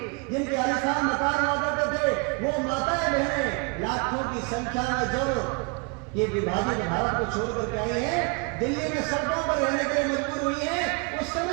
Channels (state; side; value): quieter; left; 31.8 dB